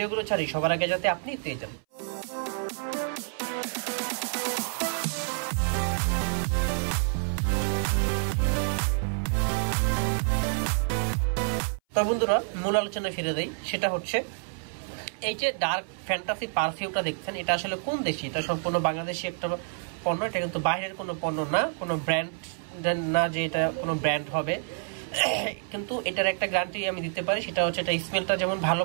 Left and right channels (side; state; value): left; silent; 59 dB below the other